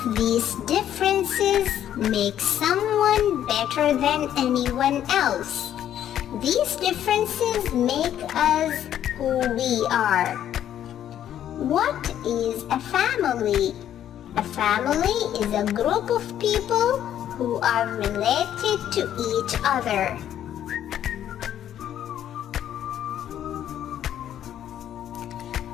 these differences make someone better than anyone else. These differences make us who we are. What is a family? A family is a group of people who are related to each other.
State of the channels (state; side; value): quieter; right; 10.8 dB